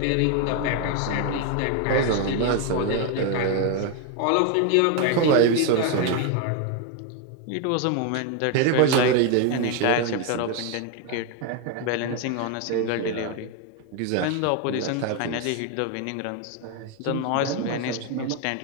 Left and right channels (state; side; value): different; both; correlation 0.01